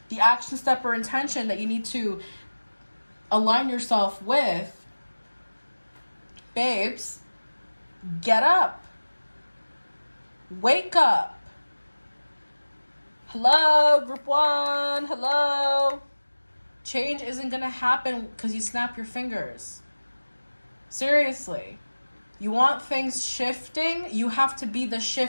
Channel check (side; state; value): both; inverted; correlation -1.00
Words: the action step or intention that you need to align yourself with, babes, get up. Wake up. Hello, group one. Hello. Change isn't going to happen because you snap your fingers. Seriously. You want things shifting, you have to be the